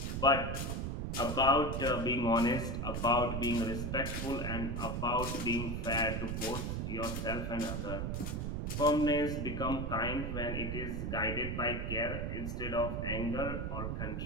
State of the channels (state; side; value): noise; right; rumble, 2 dB below the sound